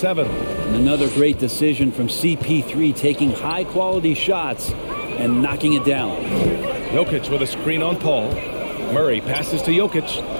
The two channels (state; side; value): inverted; both; correlation -1.00